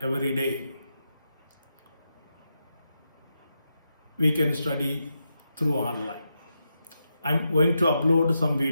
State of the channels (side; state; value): both; inverted; correlation -0.85